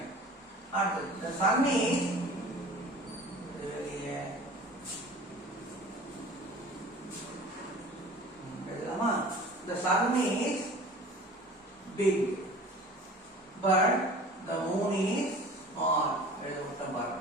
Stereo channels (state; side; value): normal; both; correlation 0.42